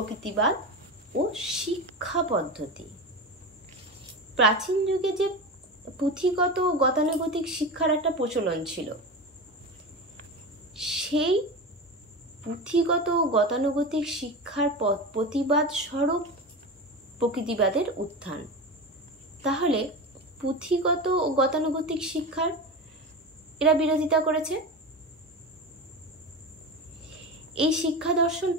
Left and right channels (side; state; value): both; normal; correlation 0.25